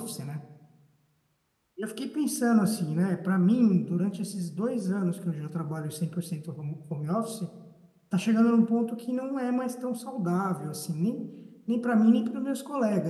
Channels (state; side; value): identical; both; correlation 1.00